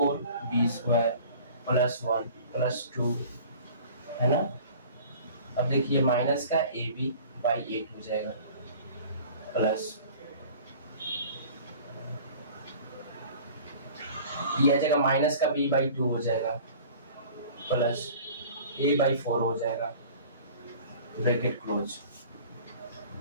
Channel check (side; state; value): both; inverted; correlation -0.45